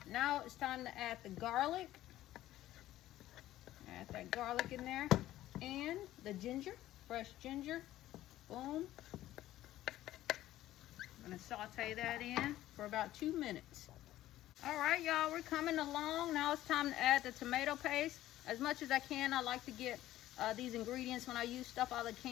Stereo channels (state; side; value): quieter; right; 14.4 dB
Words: Now it's time to add the garlic. Add that garlic in there and the ginger, fresh ginger. Boom. I'm gonna saute that in for about 2 minutes. All right, y'all, we're coming along. Now it's time to add the tomato paste. As much as I can, I like to get these ingredients when I use stuff out of the